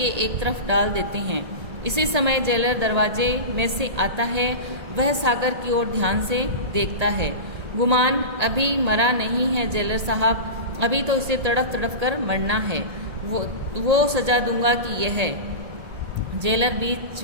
एक तरफ डाल देते हैं। इसी समय जेलर दरवाजे में से आता है। वह सागर की ओर ध्यान से देखता है। गुमान, अभी मरा नहीं है जेलर साहब, अभी तो इसे तड़प तड़प कर मरना है। वो सजा दूंगा कि यह है। जेलर बीच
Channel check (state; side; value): late; left; 1.8 ms